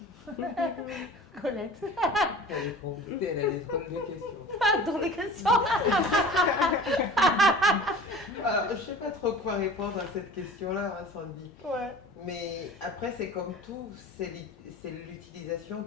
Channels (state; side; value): normal; both; correlation 0.41